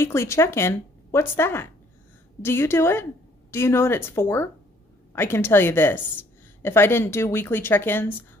check-in, what's that? Do you do it? Do you know what it's for? I can tell you this. If I didn't do weekly check-ins,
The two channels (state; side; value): normal; both; correlation 0.62